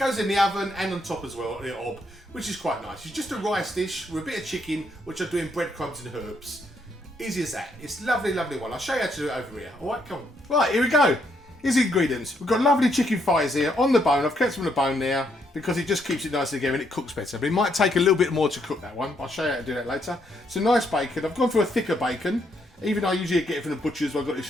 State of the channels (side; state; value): both; normal; correlation 0.74